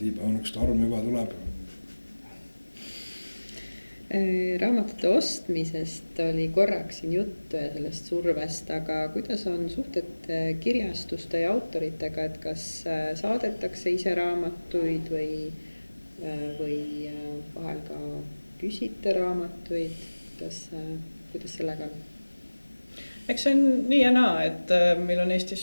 on üks arm juba tuleb. Raamatute ostmisest oli korraks siin juttu ja sellest survest, aga kuidas on suhted kirjastuste ja autoritega, et kas saadetakse ise raamatuid või vahel ka küsite raamatuid, kuidas sellega on? Eks see on nii ja naa, et meil on Eestis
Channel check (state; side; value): inverted; both; correlation -1.00